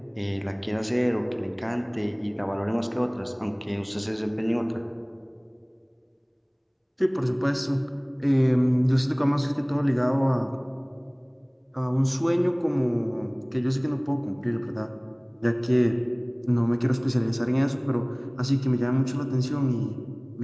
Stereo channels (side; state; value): both; identical; correlation 1.00